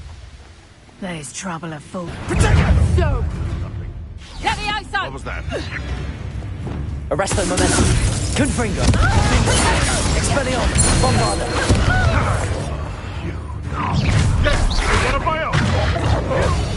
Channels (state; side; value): identical; both; correlation 1.00